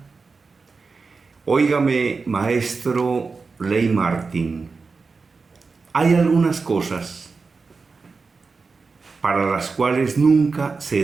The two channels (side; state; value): left; quieter; 4.4 dB